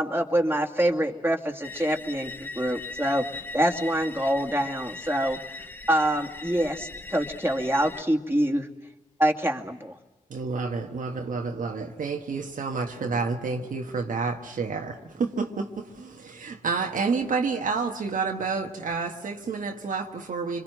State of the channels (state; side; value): normal; both; correlation 0.69